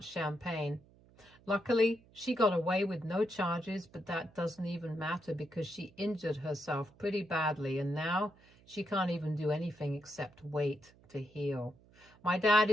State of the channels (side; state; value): right; noise; hum, 27 dB below the sound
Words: champagne. Luckily, she got away with no charges, but that doesn't even matter because she injured herself pretty badly, and now she can't even do anything except wait to heal. My dad